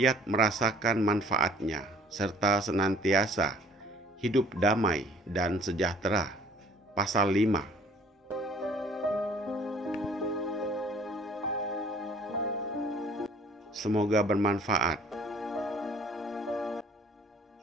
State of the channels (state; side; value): normal; both; correlation 0.54